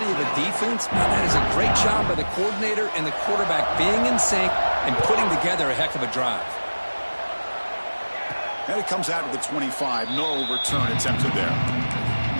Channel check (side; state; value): both; inverted; correlation -1.00